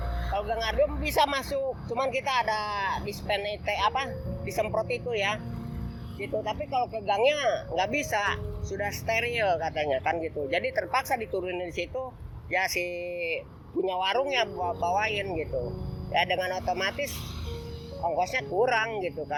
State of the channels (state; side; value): identical; both; correlation 1.00